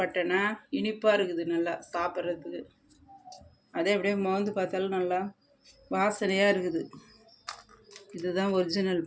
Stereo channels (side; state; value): both; identical; correlation 1.00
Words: இனிப்பாக இருக்குது, நல்லா சாப்பிட்றதுக்கு. அதே அப்படியே மோந்து பார்த்தாலும் நல்லா வாசனையாக இருக்குது. இதுதான் ஒரிஜினல்